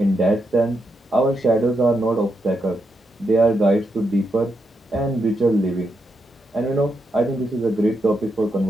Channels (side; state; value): both; normal; correlation 0.83